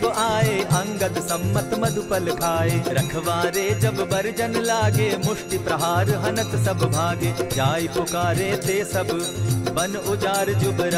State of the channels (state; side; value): identical; both; correlation 1.00